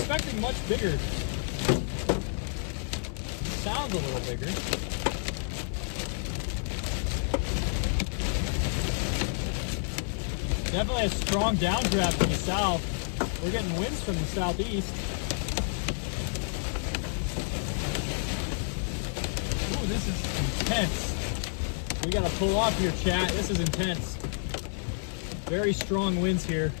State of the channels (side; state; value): right; silent; digital silence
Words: much bigger. Sounds a little bigger. Definitely a strong downdraft from the south. We're getting winds from the southeast. Ooh, this is intense. We gotta pull off here, chat. This is intense. Very strong winds here.